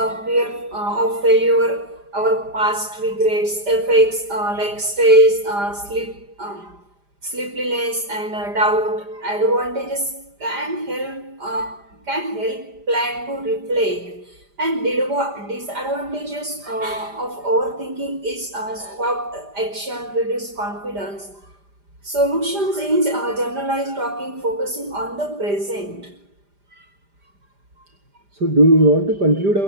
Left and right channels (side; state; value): left; late; 5.0 ms